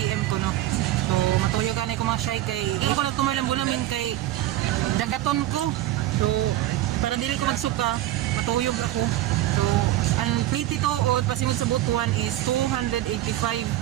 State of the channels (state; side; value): quieter; left; 14.6 dB